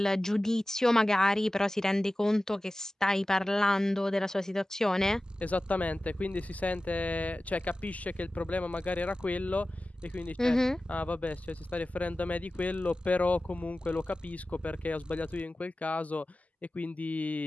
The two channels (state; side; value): normal; both; correlation 0.96